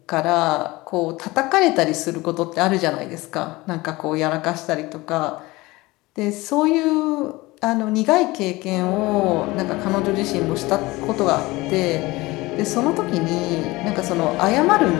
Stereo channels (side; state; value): right; quieter; 21.0 dB